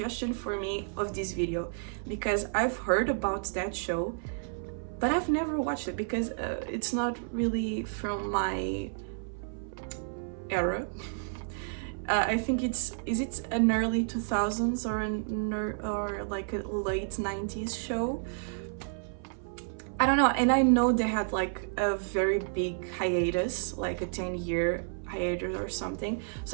for me of this video because I've heard about that show, but I've never watched it because it's not really from my era. I think is it an early 2000s or like a late 90s show? I don't know, and I know they had like a very big hiatus, like a 10-year hiatus or something.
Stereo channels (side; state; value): left; silent; 55 dB below the other